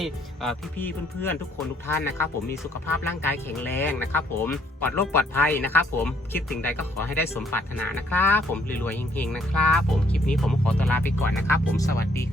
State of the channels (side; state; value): both; normal; correlation 0.66